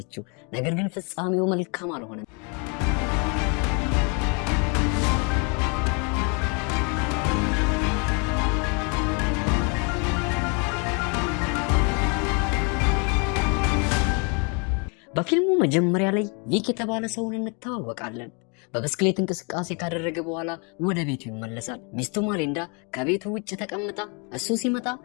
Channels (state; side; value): quieter; right; 34.5 dB